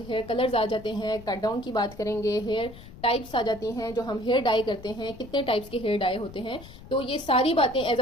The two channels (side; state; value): left; noise; rumble, 17 dB below the sound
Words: हेयर कलर्स आ जाते हैं, कट डाउन की बात करेंगे, हेयर टाइप्स आ जाती हैं, जो हम हेयर डाई करते हैं, कितने टाइप्स के हेयर डाई होते हैं। तो ये सारी बातें as